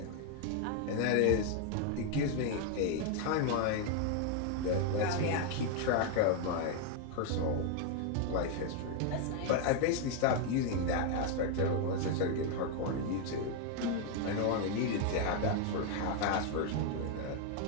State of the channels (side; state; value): both; different; correlation 0.01